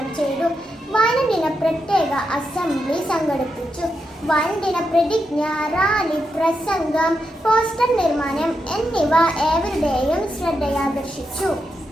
ചെയ്തു. വായനദിന പ്രത്യേക അസംബ്ലി സംഘടിപ്പിച്ചു. വായനദിന പ്രതിജ്ഞ, റാലി, പ്രസംഗം, പോസ്റ്റർ നിർമ്മാണം എന്നിവ ഏവരുടെയും ശ്രദ്ധയാകർഷിച്ചു.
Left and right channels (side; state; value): both; normal; correlation 0.85